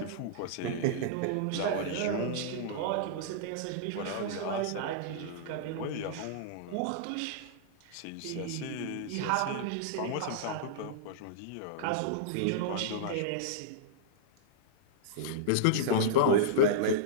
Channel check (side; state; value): both; different; correlation -0.02